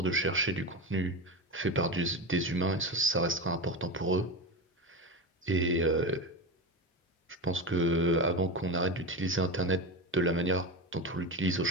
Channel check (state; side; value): normal; both; correlation 0.20